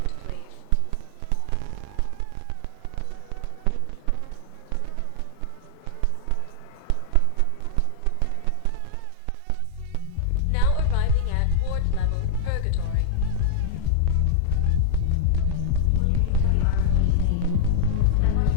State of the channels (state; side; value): different; both; correlation 0.00